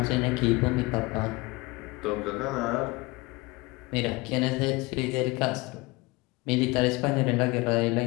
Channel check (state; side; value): quieter; right; 23.3 dB